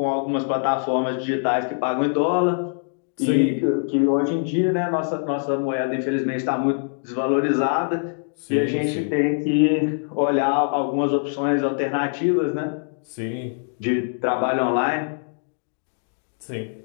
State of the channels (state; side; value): silent; right; digital silence